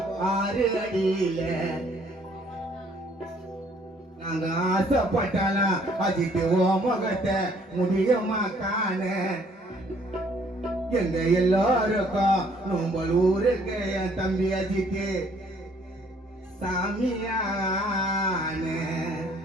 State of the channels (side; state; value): both; normal; correlation 0.62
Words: 6 அடியில நாங்க ஆசைப்பட்டாலாம் அஜித்து ஓ முகத்தை முடியுமா காண எங்க எல்லாருக்கும் நோம்பல் ஊருக்கு என் தம்பி அஜித்து சாமியான